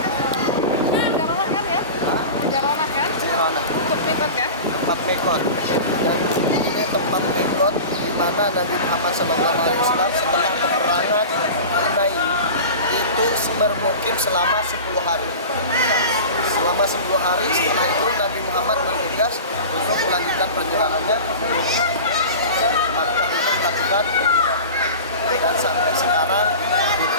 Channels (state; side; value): inverted; both; correlation -0.33